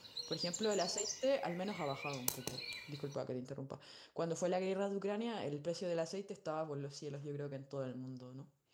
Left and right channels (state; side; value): identical; both; correlation 1.00